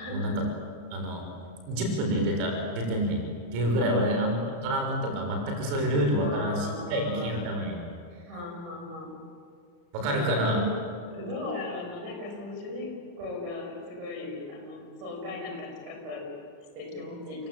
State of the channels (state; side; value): late; left; 35 ms